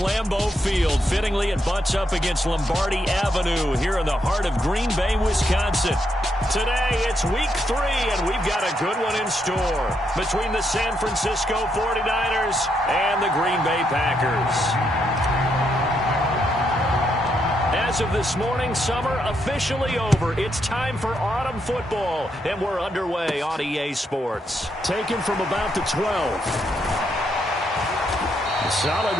Field. Fittingly, it butts up against Lombardi Avenue here in the heart of Green Bay, Wisconsin. Today, it's week 3, and we've got a good one in store between the San Francisco 49ers and the Green Bay Packers. As of this morning, summer officially over. It's time for autumn football, and we're underway on EA Sports. Taken from about the 12. A solid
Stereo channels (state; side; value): normal; both; correlation 0.78